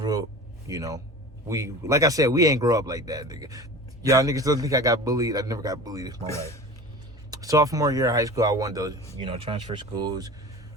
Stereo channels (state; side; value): normal; both; correlation 0.36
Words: up, you know. We, like I said, we ain't grow up like that, nigga. Y'all niggas don't think I got bullied. I never got bullied in my life. Sophomore year of high school, I wanted to, you know, transfer schools,